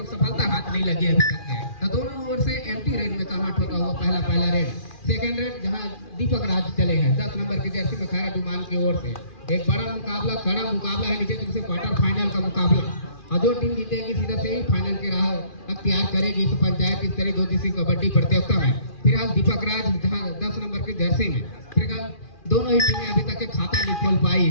सफलता हाथ नहीं लगी अभी तक है। तो दोनों ओर से एम्प्टी रेड में कन्वर्ट होता हुआ पहला रेड। सेकंड रेड जहां दीपक राज चले हैं 10 नंबर की जर्सी में खैरा डुमान की ओर से। एक बड़ा मुकाबला, कड़ा मुकाबला है, नीचे तरफ से क्वार्टर फाइनल का मुकाबला। और जो टीम जीतेगी सीधा से ही फाइनल की राह अख्तियार करेगी इस पंचायत स्तरीय 2 दिवसीय कबड्डी प्रतियोगिता में। फिलहाल दीपक राज जहां 10 नंबर की जर्सी में, फिलहाल दोनों ही टीमें अभी तक के खाता नहीं खोल पाई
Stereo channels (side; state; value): right; late; 2.4 ms